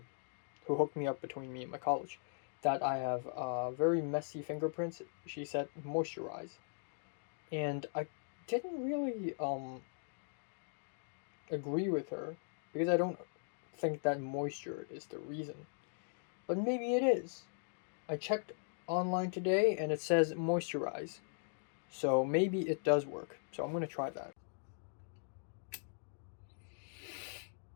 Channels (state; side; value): silent; right; digital silence